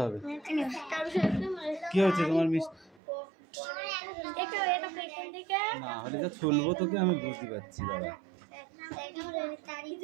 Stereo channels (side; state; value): left; drops out; at 3.0 s